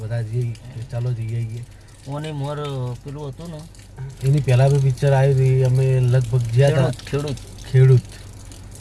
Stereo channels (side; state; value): both; identical; correlation 1.00